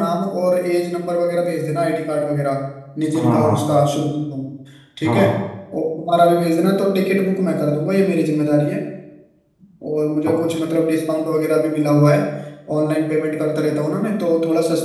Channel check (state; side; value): identical; both; correlation 1.00